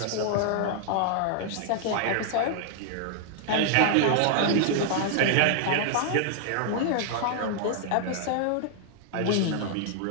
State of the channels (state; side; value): different; both; correlation 0.00